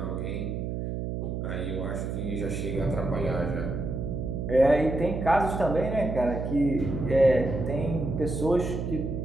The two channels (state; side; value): noise; right; hum, 3 dB below the sound